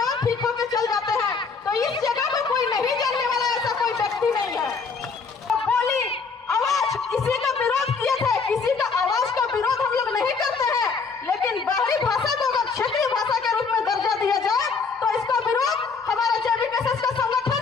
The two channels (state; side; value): quieter; right; 5.0 dB